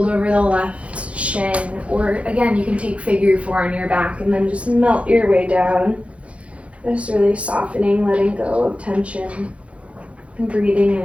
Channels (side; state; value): left; late; 0.062 ms